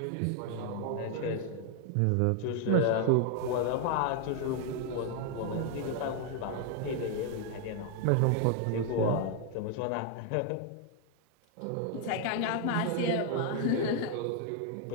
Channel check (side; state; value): both; different; correlation 0.00